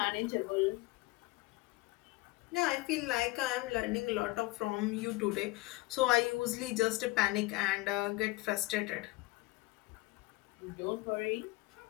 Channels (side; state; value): right; quieter; 21.3 dB